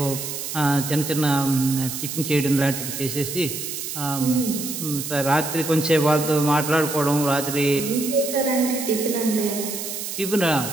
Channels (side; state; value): right; noise; hiss, 6 dB below the sound